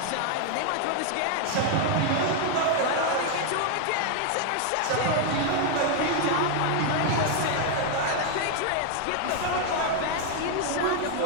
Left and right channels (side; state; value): both; different; correlation 0.00